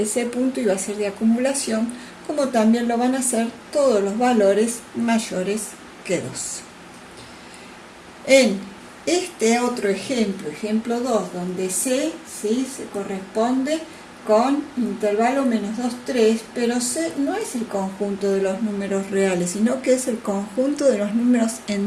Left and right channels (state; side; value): identical; both; correlation 1.00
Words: punto iba a ser de acumulación, como también lo van a ser todos los valores mayores que 2. En este otro ejemplo, ejemplo 2, donde C, ¿sí?, se corresponde con intervalo menos 2, 3, pero C no es el conjunto de los números reales, sino que es el conjunto de los números